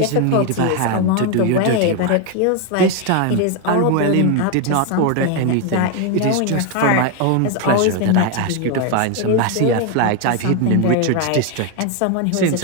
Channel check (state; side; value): different; both; correlation 0.01